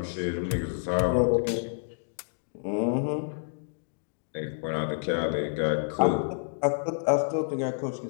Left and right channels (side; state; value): right; silent; digital silence